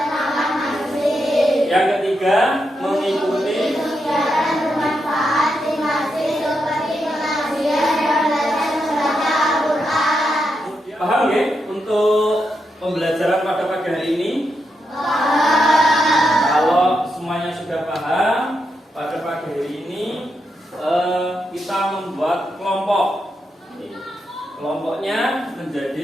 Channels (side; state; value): both; normal; correlation 0.84